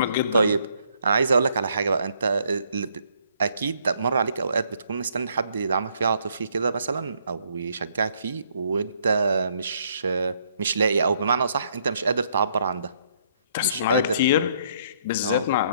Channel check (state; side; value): inverted; both; correlation -0.68